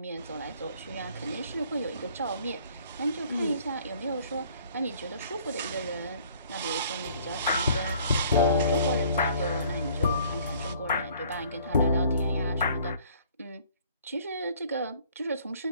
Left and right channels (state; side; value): inverted; both; correlation -0.57